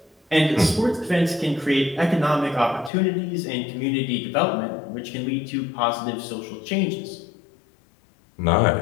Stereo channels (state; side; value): drops out; right; at 2.9 s